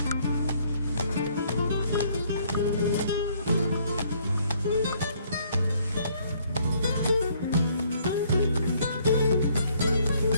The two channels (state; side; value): inverted; both; correlation -0.64